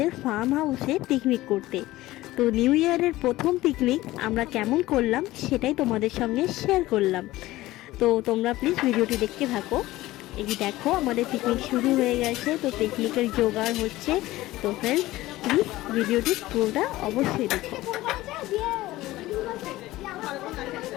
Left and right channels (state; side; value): quieter; right; 17.2 dB